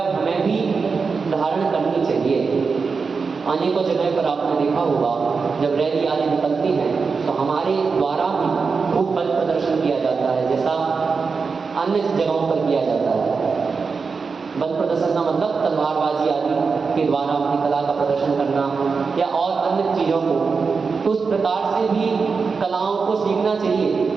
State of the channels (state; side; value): quieter; left; 5.0 dB